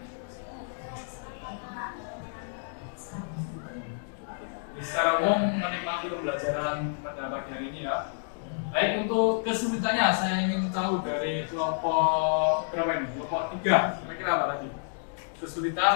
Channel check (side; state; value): right; silent; digital silence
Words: Secara umum menikmati pembelajaran pada pagi hari ini ya. Baik, untuk kesulitannya saya ingin tahu dari kelompok berapa ini? Kelompok 3, kira-kira apa tadi?